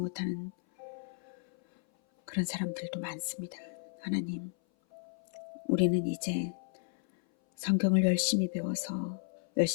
그런 사람들도 많습니다. 하나님, 우리는 이제 성경을 열심히 배워서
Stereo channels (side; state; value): right; silent; 55 dB below the other